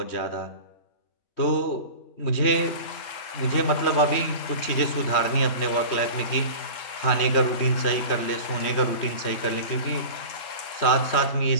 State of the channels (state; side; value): late; right; 3.1 ms